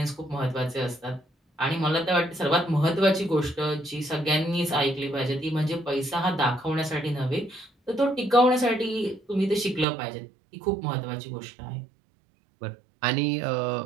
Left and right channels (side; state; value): left; drops out; at 9.9 s